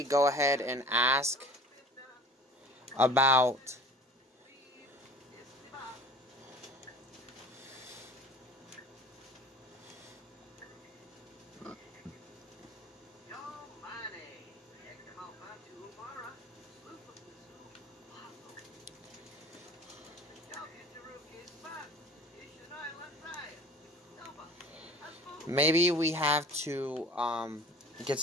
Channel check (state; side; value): normal; both; correlation 0.44